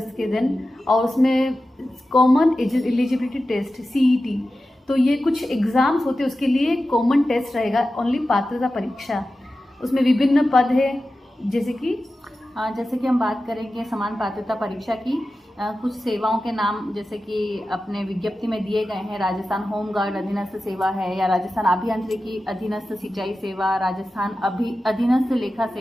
के दिन। और उसमें कॉमन एलिजिबिलिटी टेस्ट सीईटी, तो ये कुछ एग्ज़ाम्स होते हैं, उसके लिए कॉमन टेस्ट रहेगा, ओनली पात्रता परीक्षा। उसमें विभिन्न पद है, जैसे कि हम बात करेंगे समान पात्रता परीक्षा की। कुछ सेवाओं के नाम जैसे कि अपने विज्ञप्ति में दिए गए हैं। राजस्थान होमगार्ड अधीनस्थ सेवा है, या राजस्थान अभियांत्रिकी अधीनस्थ सिंचाई सेवा, राजस्थान अधीनस्थ लेखा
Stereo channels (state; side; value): normal; both; correlation 0.93